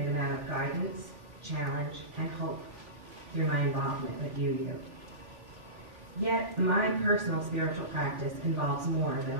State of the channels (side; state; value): left; late; 3.5 ms